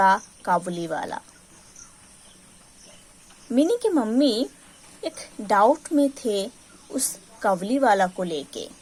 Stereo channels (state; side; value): identical; both; correlation 1.00